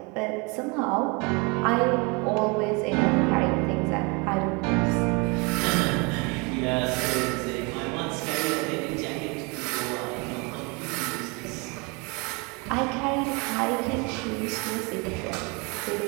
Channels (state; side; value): quieter; left; 29.8 dB